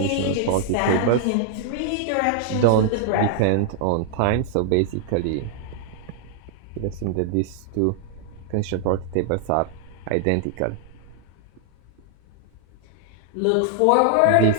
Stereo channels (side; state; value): both; different; correlation 0.00